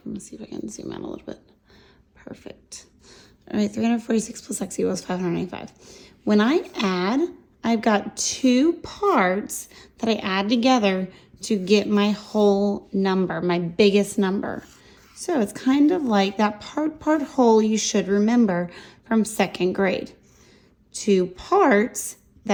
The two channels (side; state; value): both; identical; correlation 1.00